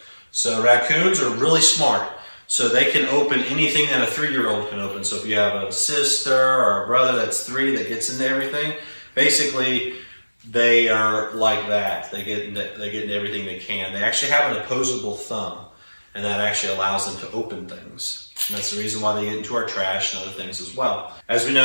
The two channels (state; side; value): inverted; both; correlation -1.00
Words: So raccoons are really smart. So they can open anything that a 3-year-old can open. So if you have a sister or a brother that's 3 that gets into everything, basically they are like that. They get into everything they can. They actually have an opposable thumb, and that actually allows them to open things. And that's the reason why they get into our trash and other things as well. As we